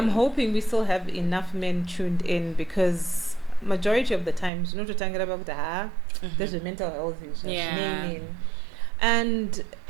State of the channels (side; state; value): left; drops out; at 4.5 s